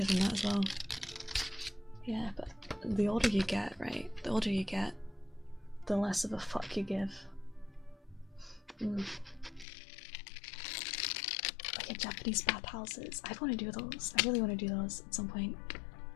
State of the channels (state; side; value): drops out; right; at 9.7 s